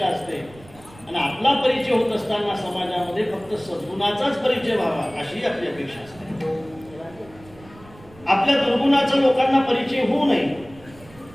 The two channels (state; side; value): noise; right; rumble, 23 dB below the sound